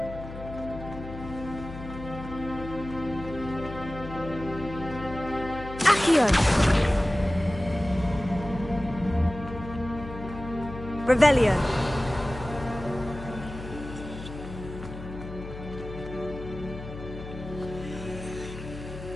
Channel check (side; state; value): left; noise; hum, 11 dB below the sound